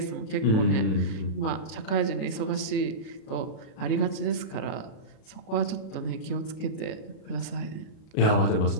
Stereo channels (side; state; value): right; late; 36 ms